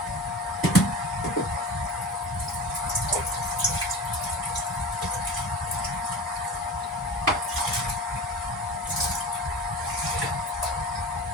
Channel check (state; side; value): normal; both; correlation 0.33